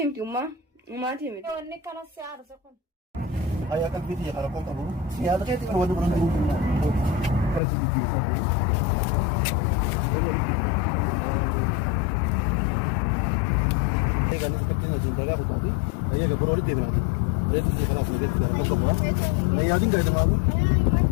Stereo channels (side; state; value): right; drops out; at 7.6 s